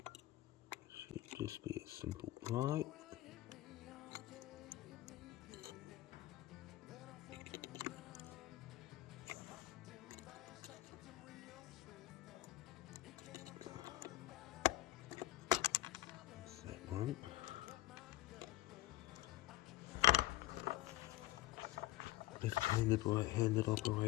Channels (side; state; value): right; quieter; 16.7 dB